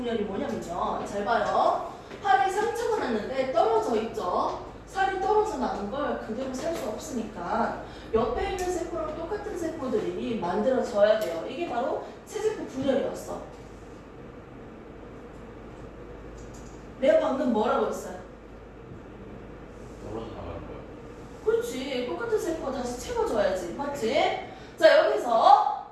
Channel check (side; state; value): both; identical; correlation 1.00